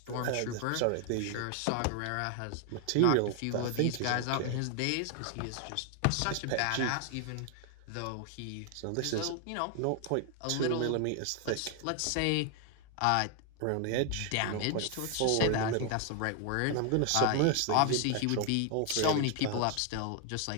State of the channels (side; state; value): both; different; correlation 0.00